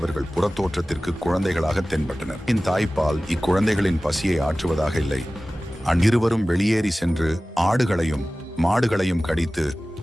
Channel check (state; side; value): normal; both; correlation 0.97